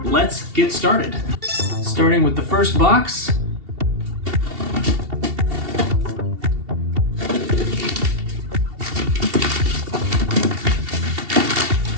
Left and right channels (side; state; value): left; late; 2.7 ms